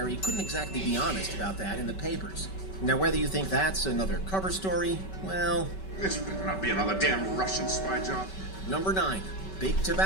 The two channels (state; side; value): late; right; 5.2 ms